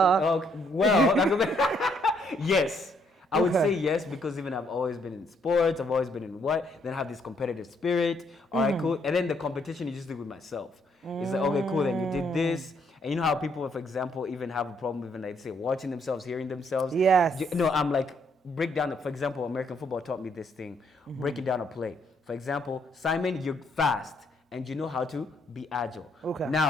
Yes. I would say yes, because even I've always been in sports, I've always been in then I have this competitive spirit. All right, cool. And then the competition you just do with myself. It's like, okay, cool, then you did this. And you know how people, for example, even have a problem even like say watching themselves, hearing themselves. Yes. I'm like, break down, for example, American football taught me this thing, breaking down a play. For example, Simon, you're fast and you know how to be agile. Okay.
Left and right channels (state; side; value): normal; both; correlation 0.71